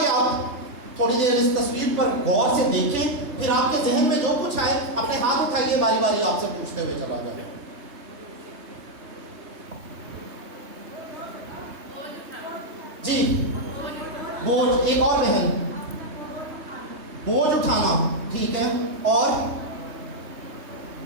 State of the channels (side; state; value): left; late; 3.2 ms